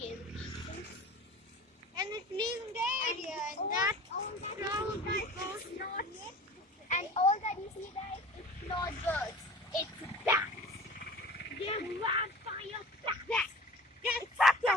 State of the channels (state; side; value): normal; both; correlation 0.39